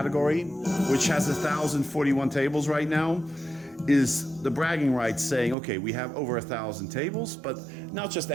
which has 1,041 tables right now, is the bragging rights saying, okay, we have over 1,000 tables, but not just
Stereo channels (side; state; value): left; drops out; at 5.6 s